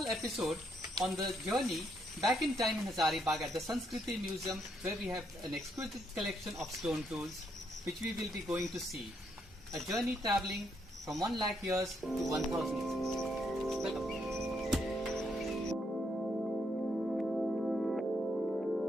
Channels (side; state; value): both; normal; correlation 0.75